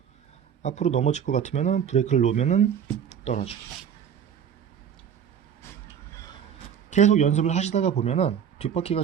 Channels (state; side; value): quieter; left; 8.2 dB